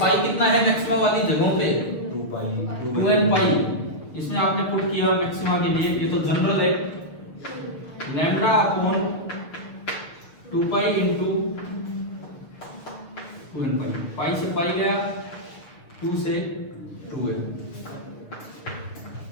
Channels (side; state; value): right; late; 6.7 ms